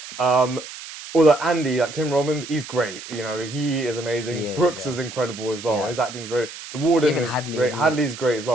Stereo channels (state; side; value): noise; right; hiss, 13 dB below the sound